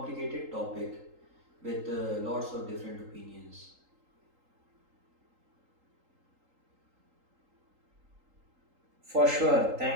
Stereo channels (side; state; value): left; late; 3.8 ms